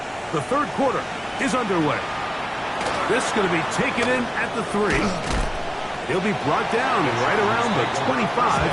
The third quarter is underway. This is going to be taken in at the 3. He'll be brought down right around the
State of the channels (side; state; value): both; identical; correlation 1.00